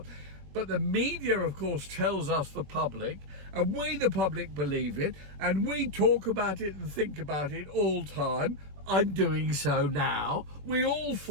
But the media, of course, tells us, the public, and we, the public, believe it, and we talk about it and think about it all time. I'm doing so now. We all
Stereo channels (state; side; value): late; left; 21 ms